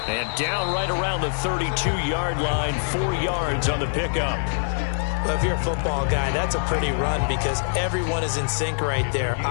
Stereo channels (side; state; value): right; silent; digital silence